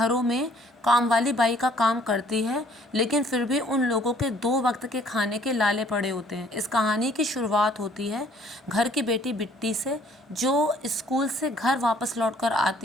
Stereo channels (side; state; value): both; normal; correlation 0.59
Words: में काम वाली बाई का काम करती है, लेकिन फिर भी उन लोगों के 2 वक्त के खाने के लाले पड़े होते हैं। इस कहानी की शुरुआत होती है घर की बेटी बिट्टी से, जो स्कूल से घर वापस लौटकर